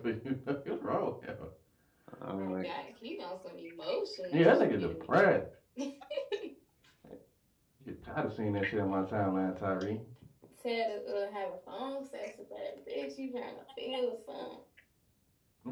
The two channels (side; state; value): both; identical; correlation 1.00